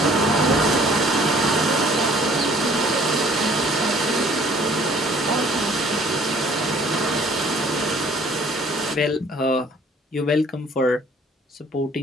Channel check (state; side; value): normal; both; correlation 0.56